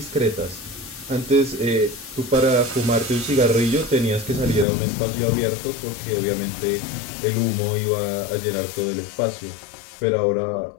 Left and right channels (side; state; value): right; drops out; at 4.7 s